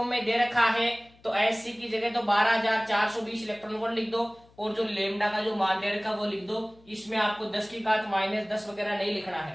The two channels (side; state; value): left; noise; hum, 28 dB below the sound